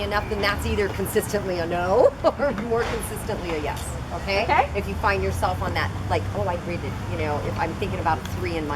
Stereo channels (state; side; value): identical; both; correlation 1.00